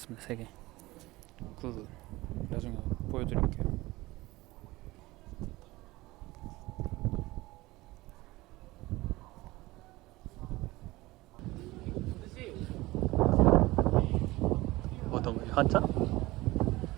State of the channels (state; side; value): quieter; left; 19.7 dB